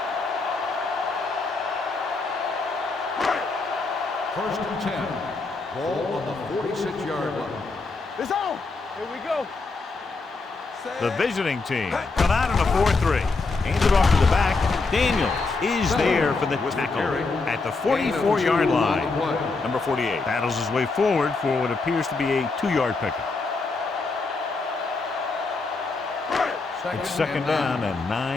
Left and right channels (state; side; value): quieter; right; 3.9 dB